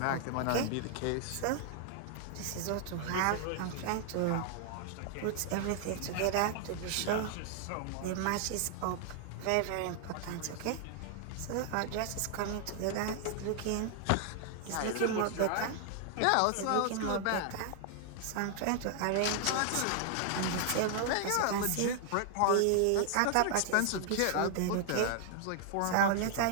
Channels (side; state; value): both; different; correlation 0.00